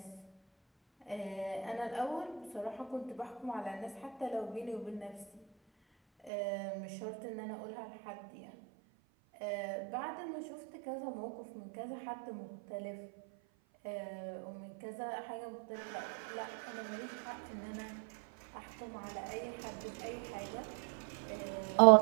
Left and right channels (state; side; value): drops out; left; at 6.3 s